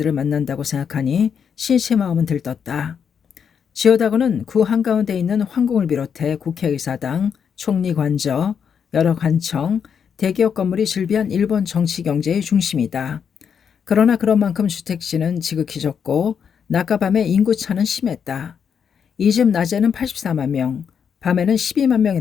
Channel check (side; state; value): right; quieter; 7.2 dB